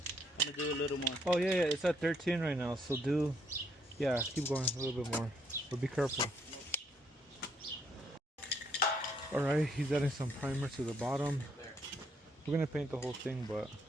I'm gonna do a little more. Oh yeah, it's at 13 right now, so keep going a little bit more. But be careful. Alright, he's adding some primer to the bottom. We're gonna paint the whole thing, but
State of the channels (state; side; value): normal; both; correlation 0.71